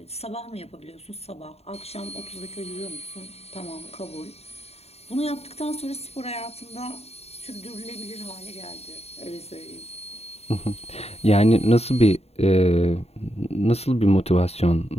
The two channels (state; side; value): late; right; 0.30 ms